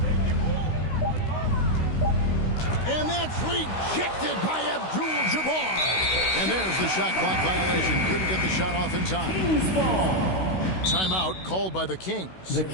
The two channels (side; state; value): right; late; 16 ms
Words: And that's rejected by Abdul-Jabbar. And there's the shot clock violation. Couldn't get the shot off in time. Timeout called by the Kings. The